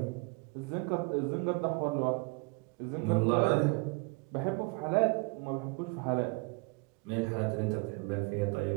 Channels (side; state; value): left; quieter; 29.9 dB